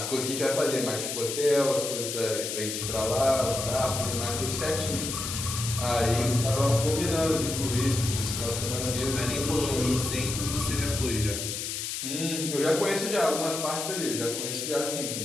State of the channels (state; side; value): noise; left; hiss, 4 dB below the sound